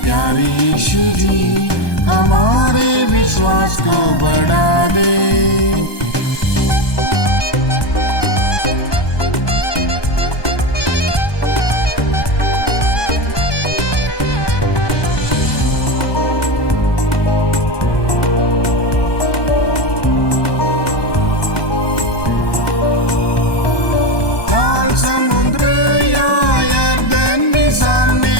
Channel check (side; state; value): right; late; 1.2 ms